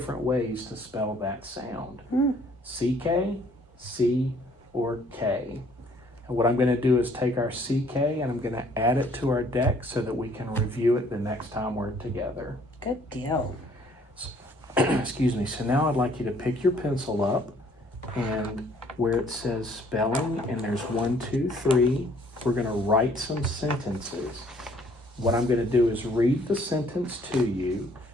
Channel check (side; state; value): both; normal; correlation 0.60